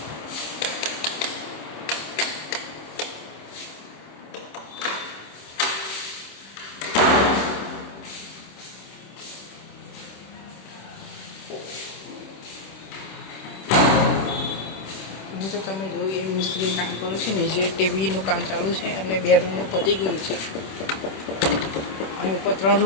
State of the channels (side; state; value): right; late; 26 ms